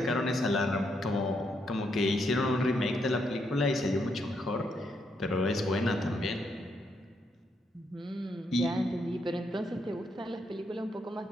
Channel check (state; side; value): normal; both; correlation 0.78